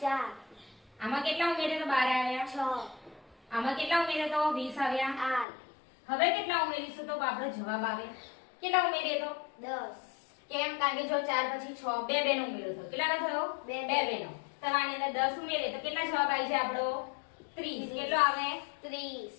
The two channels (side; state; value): right; drops out; at 5.5 s